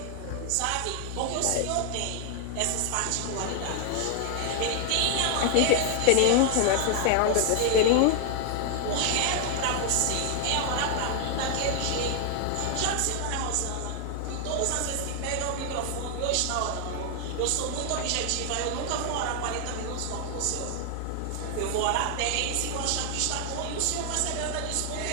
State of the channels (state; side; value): different; both; correlation 0.00